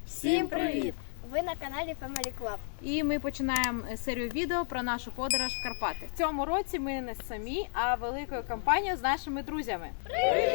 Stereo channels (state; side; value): silent; right; digital silence